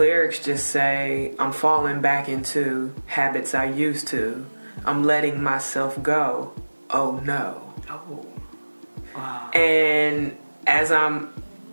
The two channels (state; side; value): inverted; both; correlation -1.00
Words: just say, I'm falling back into habits I used to. I'm letting myself go. Oh no. Oh. Wow. And as I'm